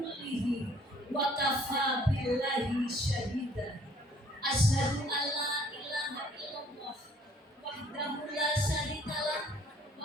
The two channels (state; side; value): normal; both; correlation 0.59